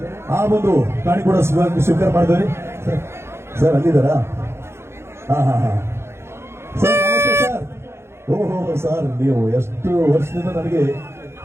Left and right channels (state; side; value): late; left; 0.12 ms